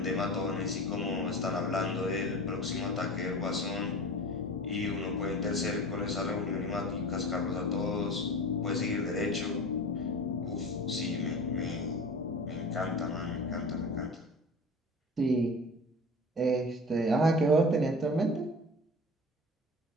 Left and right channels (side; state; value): both; normal; correlation 0.35